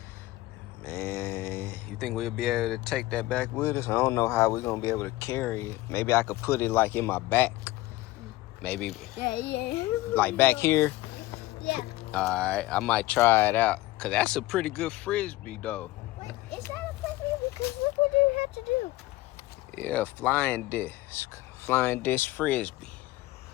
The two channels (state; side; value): quieter; right; 17.9 dB